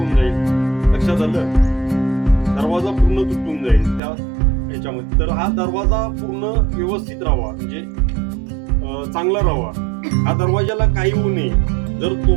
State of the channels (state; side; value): drops out; left; at 4.0 s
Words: जाईल. लक्षात आलं? दरवाजा पूर्ण तुटून जाईल त्या याच्यामध्ये. तर हा दरवाजा पूर्ण व्यवस्थित राहावा, म्हणजे चांगला राहावा. हा दरवाजाला काही होऊ नये. जर